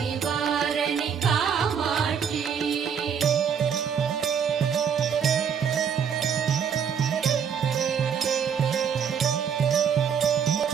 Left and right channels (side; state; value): left; quieter; 7.4 dB